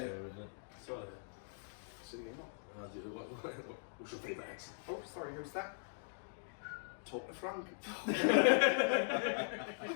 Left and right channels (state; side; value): silent; right; digital silence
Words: isn't it? Sorry. What's your favourite accent? Oh, sorry, who's that? Talk to Frank. I